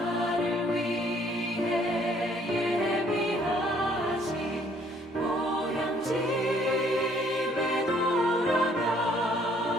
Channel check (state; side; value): normal; both; correlation 0.62